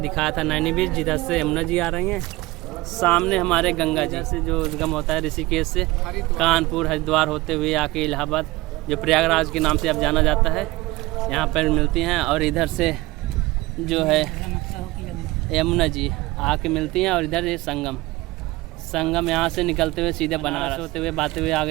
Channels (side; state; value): left; quieter; 20.2 dB